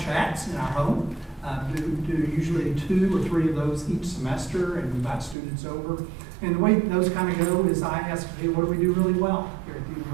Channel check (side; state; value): left; drops out; at 5.4 s